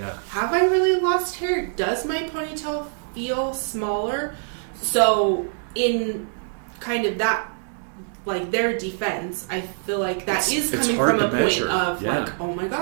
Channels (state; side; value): silent; left; digital silence